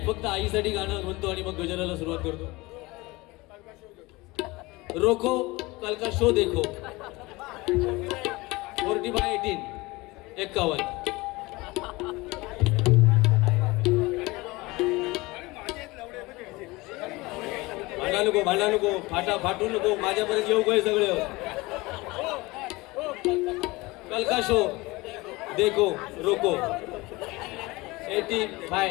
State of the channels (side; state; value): right; quieter; 22.3 dB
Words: फक्त आईसाठी गाणं म्हणतो आणि मग गजराला सुरुवात करतो. रोको कल का शो देखो 40/18 51. भांडा नको फाटू नको माझ्यापर्यंत येऊ काय सगळे. कल का शो देखो रोको